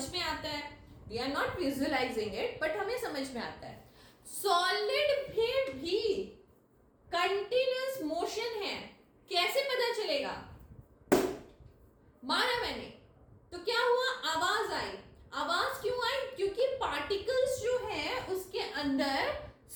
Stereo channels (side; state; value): both; identical; correlation 1.00